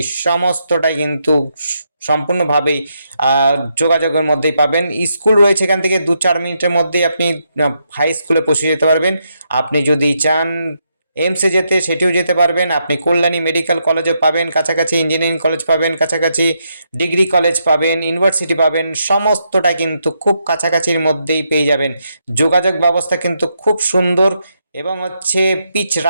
সমস্তটাই কিন্তু সম্পূর্ণভাবেই যোগাযোগের মধ্যেই পাবেন। স্কুল রয়েছে, এখান থেকে 2-4 মিনিটের মধ্যেই আপনি হাই স্কুলে পৌঁছে যেতে পারবেন। আপনি যদি চান এমসে যেতে, সেটিও যেতে পারবেন। আপনি কল্যাণী মেডিকেল কলেজও পাবেন কাছাকাছি, ইঞ্জিনিয়ারিং কলেজ পাবেন কাছাকাছি, ডিগ্রি কলেজ পাবেন, ইউনিভার্সিটি পাবেন, সমস্তটা কিন্তু খুব কাছাকাছির মধ্যেই পেয়ে যাবেন। যোগাযোগ ব্যবস্থা কিন্তু খুব সুন্দর এবং হচ্ছে পিচ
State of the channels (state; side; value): inverted; both; correlation -0.80